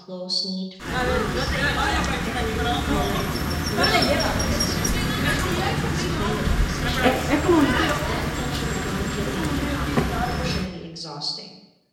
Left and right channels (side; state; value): both; identical; correlation 1.00